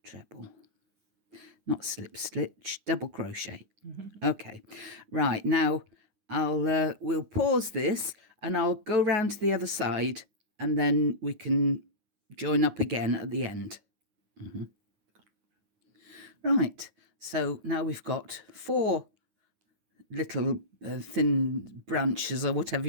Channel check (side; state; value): left; late; 9.5 ms